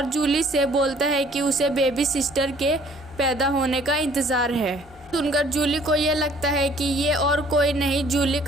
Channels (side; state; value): both; normal; correlation 0.57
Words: जूली से बोलता है कि उसे बेबी सिस्टर के पैदा होने का इंतज़ार है। सुनकर जूली को ये लगता है कि ये और कोई नहीं जूली